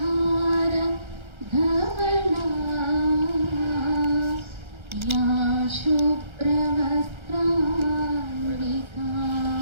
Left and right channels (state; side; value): late; left; 1.3 ms